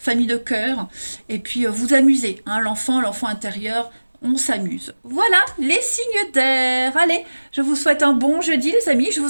de cœur. Et puis, vous amusez, l'enfant intérieur, on s'amuse. Voilà, les signes d'air. Allez, je vous souhaite un bon jeudi, les amis, je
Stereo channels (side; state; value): both; inverted; correlation -1.00